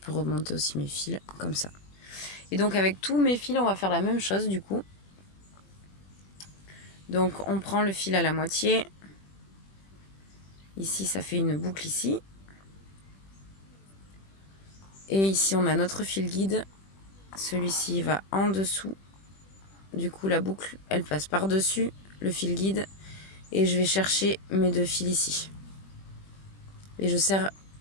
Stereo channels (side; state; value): right; late; 21 ms